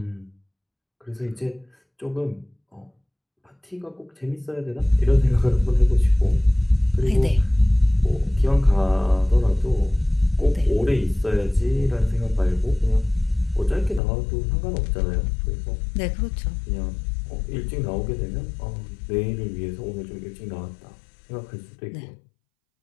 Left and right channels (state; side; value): drops out; right; at 14.0 s